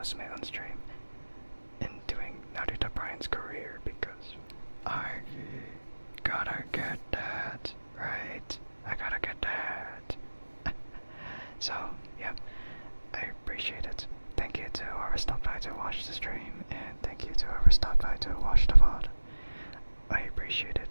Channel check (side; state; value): both; inverted; correlation -1.00